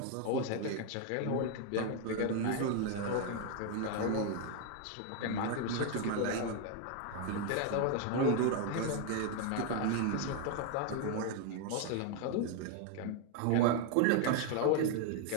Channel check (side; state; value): both; different; correlation 0.01